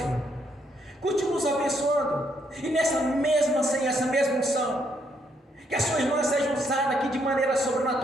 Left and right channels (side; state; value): both; normal; correlation 0.73